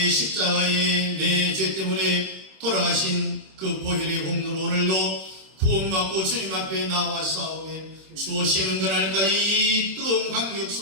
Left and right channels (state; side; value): late; left; 26 ms